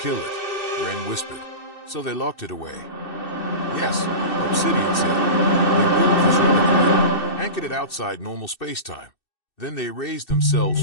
it, Ren whispered, so they locked it away. Yes, Obsidian said. They built this reliquary, anchored it outside normal space-time. Then they erased themselves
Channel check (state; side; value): late; right; 2.6 ms